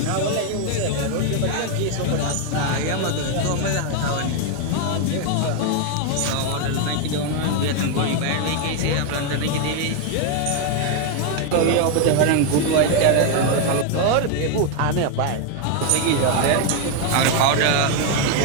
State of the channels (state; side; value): different; both; correlation 0.01